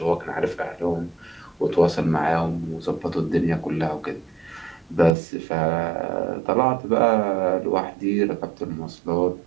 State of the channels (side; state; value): left; drops out; at 5.2 s